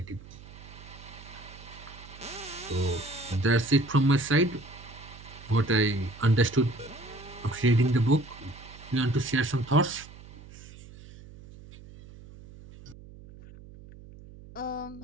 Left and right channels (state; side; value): noise; right; hum, 18 dB below the sound